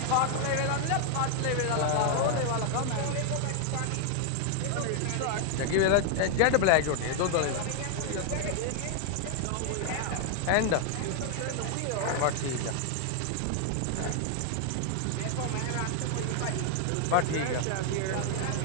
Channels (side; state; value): both; different; correlation 0.00